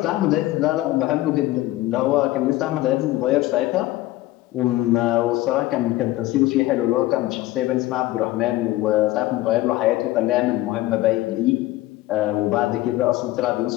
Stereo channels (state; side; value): quieter; right; 16.8 dB